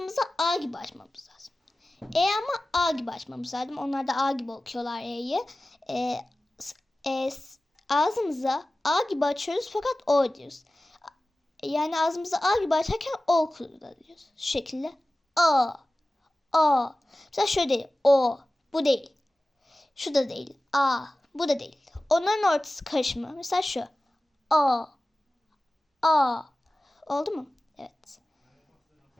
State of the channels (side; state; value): both; normal; correlation 0.96